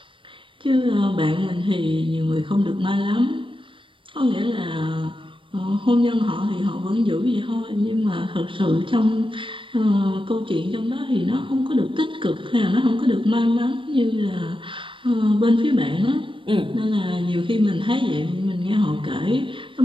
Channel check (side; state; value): left; late; 0.25 ms